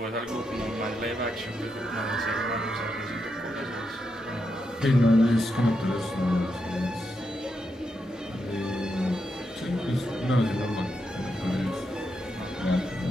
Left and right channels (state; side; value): normal; both; correlation 0.84